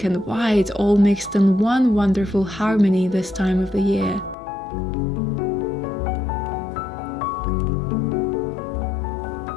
and white all mixed in one wonderful harmony this time of the year.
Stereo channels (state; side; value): drops out; right; at 4.4 s